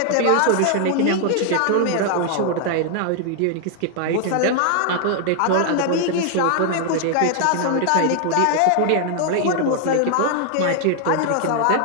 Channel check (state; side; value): different; both; correlation 0.00